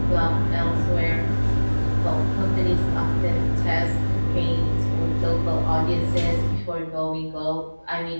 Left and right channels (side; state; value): both; inverted; correlation -1.00